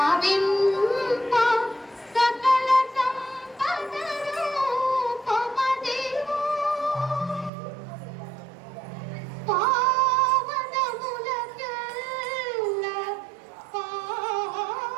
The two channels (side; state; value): left; drops out; at 7.5 s